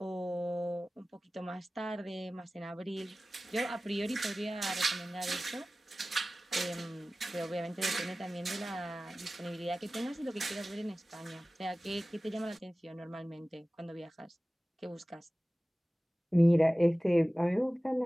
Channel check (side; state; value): both; normal; correlation 0.97